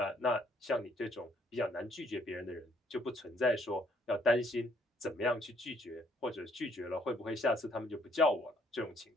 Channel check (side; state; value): both; normal; correlation 0.66